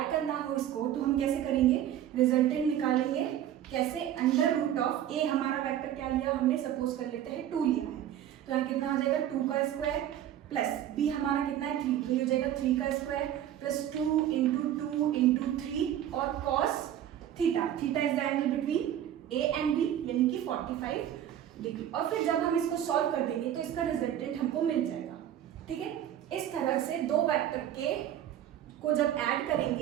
करना हो इसको तो हम कैसे करेंगे, रिजल्टेंट निकालेंगे कैसे, √a हमारा वेक्टर क्या लिया हमने, सपोज कर लेते हैं 2 लिया है, तो यहाँ कितना आ जाएगा 2 का स्क्वायर प्लस b हमारा कितना है 3, तो ये हो जाएगा 3 का स्क्वायर प्लस 2 × 2 × 3 और cos theta, theta is the angle between a and b यानी कि 45 डिग्री। और फिर जब हम इसको सॉल्व कर देंगे तो इसका रिजल्टेंट हमको मिल जाएगा, ठीक है। इस तरह से दो वेक्टर के को जब ऐड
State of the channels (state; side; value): quieter; left; 11.1 dB